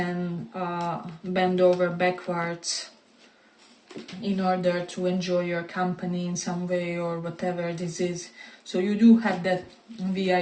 bend over backwards in order to enjoy your company in some way, or whatever this is. So you do have that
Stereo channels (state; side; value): identical; both; correlation 1.00